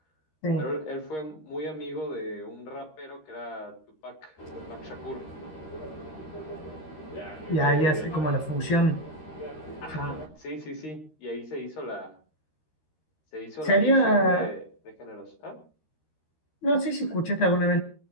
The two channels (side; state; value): right; late; 13 ms